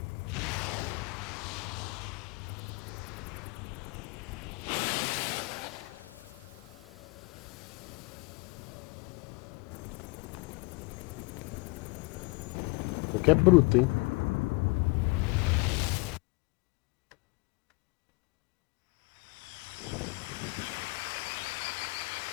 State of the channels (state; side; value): quieter; right; 27.8 dB